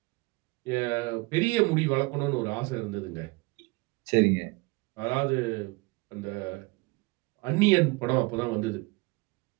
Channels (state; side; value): quieter; left; 24.5 dB